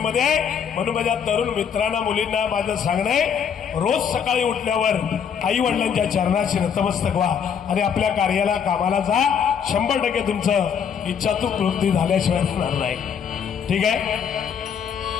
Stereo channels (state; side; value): quieter; right; 7.4 dB